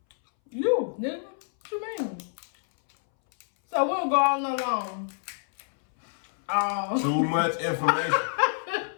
You, nigga. What you mean? So we'll go all night long. Too much information.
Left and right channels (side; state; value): right; silent; 60 dB below the other